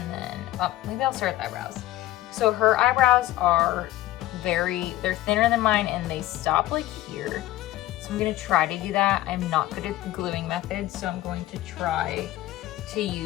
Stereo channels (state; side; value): quieter; right; 15.5 dB